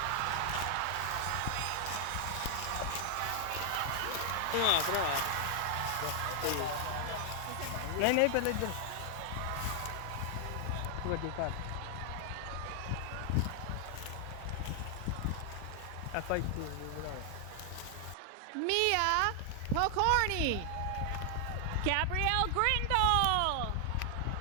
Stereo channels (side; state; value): both; different; correlation 0.00